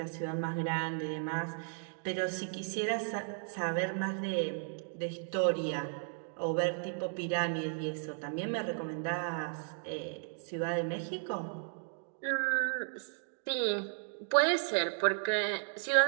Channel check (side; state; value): left; silent; 55 dB below the other